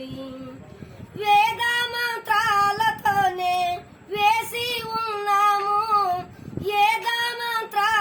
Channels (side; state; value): both; identical; correlation 1.00